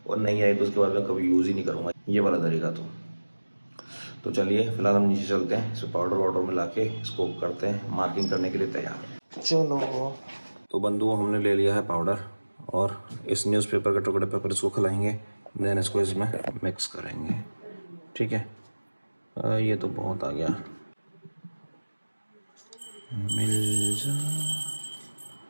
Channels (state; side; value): inverted; both; correlation -1.00